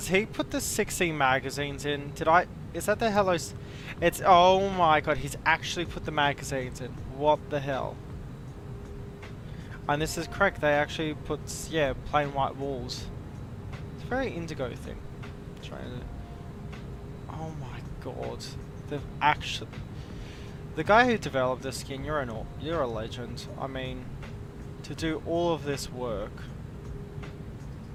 he put the 16 magazines in? Is that the Hello? It's, oh my god, he's actually put the magazines in. What the hell? And this is correct, they actually put, yeah, plain white walls. It's a very indigo thing. Oh my god. The guy who developed this skin, you're a legend. I mean, to do all of this work.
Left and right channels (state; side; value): identical; both; correlation 1.00